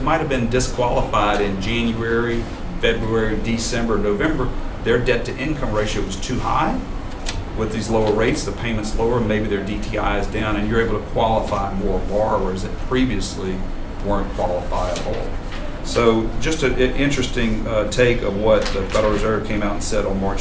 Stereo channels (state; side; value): identical; both; correlation 1.00